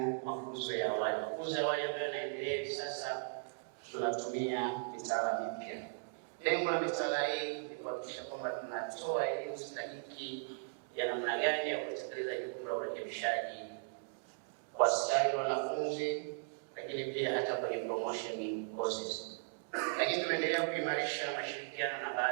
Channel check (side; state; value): left; silent; digital silence